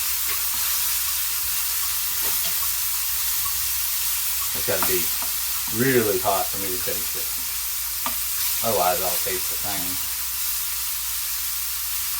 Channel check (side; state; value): both; identical; correlation 1.00